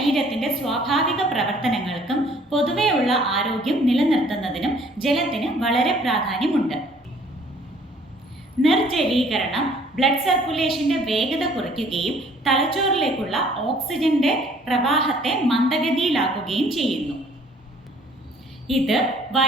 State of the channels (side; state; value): both; normal; correlation 0.57